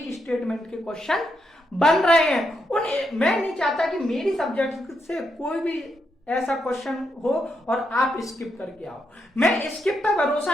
स्टेटमेंट के क्वेश्चन बन रहे हैं। मैं नहीं चाहता कि मेरी सब्जेक्ट से कोई भी ऐसा क्वेश्चन हो और आप स्किप करके आओ। मैं स्किप पर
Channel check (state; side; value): normal; both; correlation 0.81